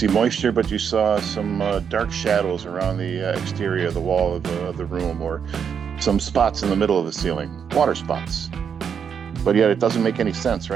moisture, but you saw some dark shadows around the exterior of the wall of the room, or some spots in the middle of the ceiling, water spots. But yet it doesn't make any sense,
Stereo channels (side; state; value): left; quieter; 7.3 dB